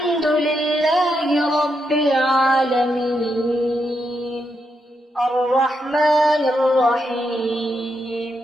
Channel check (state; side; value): normal; both; correlation 0.82